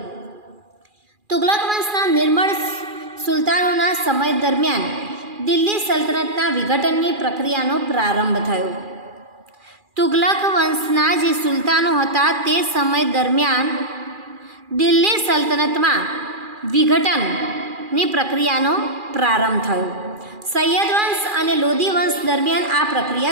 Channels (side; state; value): left; late; 2.4 ms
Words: તુગલક વંશના નિર્મળ સુલતાનોના સમય દરમિયાન દિલ્હી સલ્તનતના વિઘટનની પ્રક્રિયાનો પ્રારંભ થયો। તુગલક વંશના જે સુલતાનો હતા તે સમય દરમિયાન દિલ્હી સલ્તનતમાં વિઘટનની પ્રક્રિયાનો પ્રારંભ થયો। સૈયદ વંશ અને લોધી વંશ દરમિયાન આ